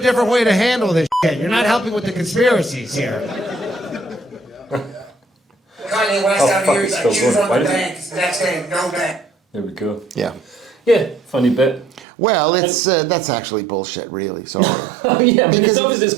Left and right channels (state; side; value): drops out; left; at 12.1 s